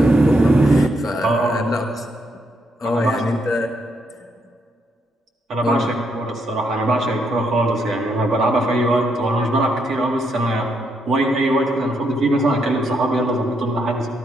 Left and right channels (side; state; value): both; normal; correlation 0.77